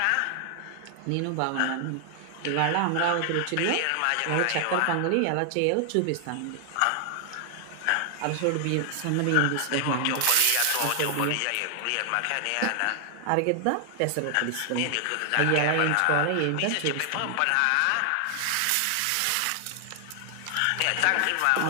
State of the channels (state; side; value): different; both; correlation 0.00